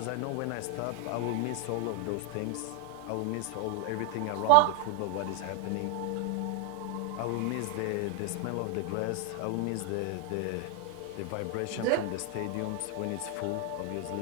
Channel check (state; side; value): different; both; correlation 0.01